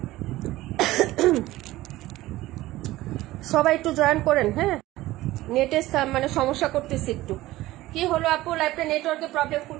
সবাই একটু জয়েন করেন। হ্যাঁ, নেটের মানে সমস্যা করতেছি একটু। কি হলো আপু, লাইভটা নেটওয়ার্কে প্রবলেম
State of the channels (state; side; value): quieter; left; 17.0 dB